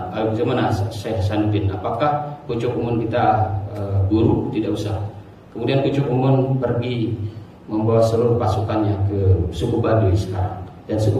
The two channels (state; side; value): identical; both; correlation 1.00